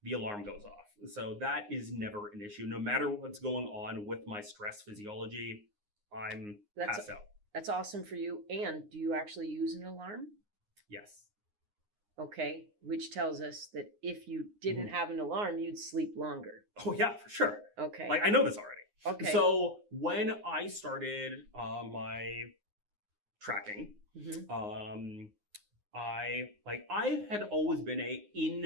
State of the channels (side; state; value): left; late; 9.7 ms